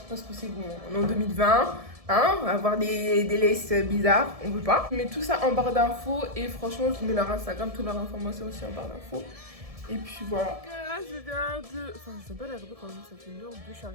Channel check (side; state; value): left; late; 1.7 ms